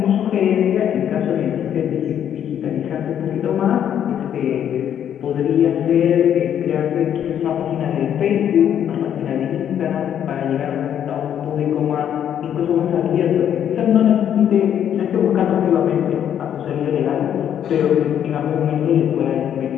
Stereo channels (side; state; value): right; quieter; 9.6 dB